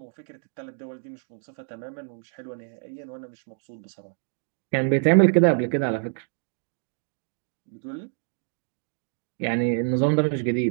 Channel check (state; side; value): silent; left; digital silence